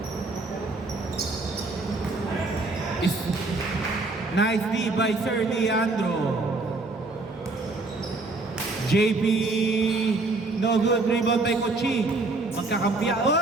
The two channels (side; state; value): left; quieter; 3.3 dB